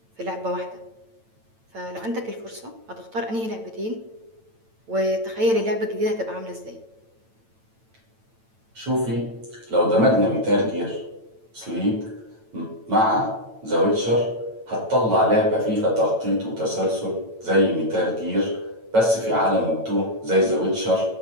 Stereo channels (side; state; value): left; late; 9.0 ms